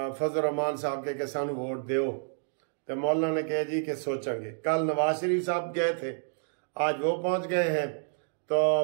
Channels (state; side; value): silent; left; digital silence